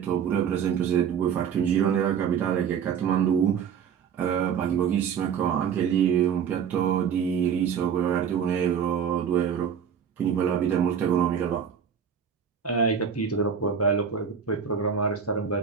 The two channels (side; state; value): left; quieter; 7.6 dB